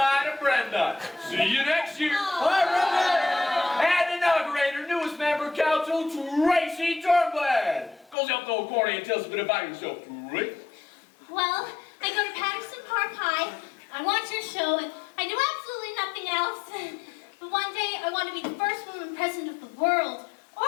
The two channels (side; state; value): right; drops out; at 8.2 s